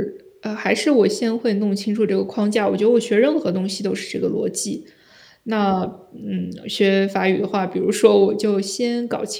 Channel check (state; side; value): identical; both; correlation 1.00